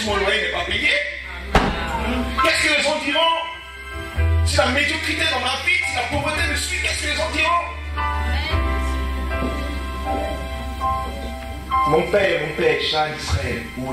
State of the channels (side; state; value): both; identical; correlation 1.00